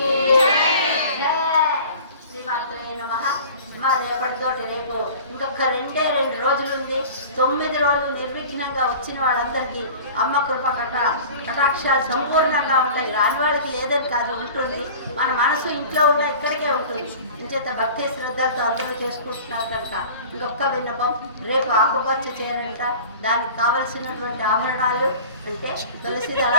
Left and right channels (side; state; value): both; inverted; correlation -0.41